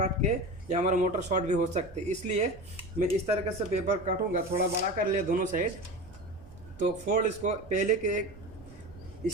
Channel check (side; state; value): right; noise; rumble, 20 dB below the sound